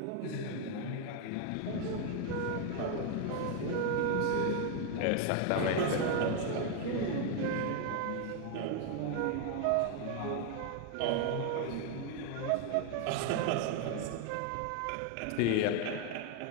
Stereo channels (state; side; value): different; both; correlation 0.01